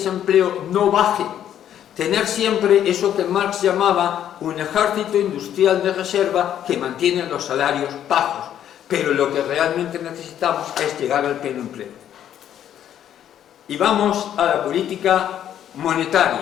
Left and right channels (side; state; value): right; quieter; 10.4 dB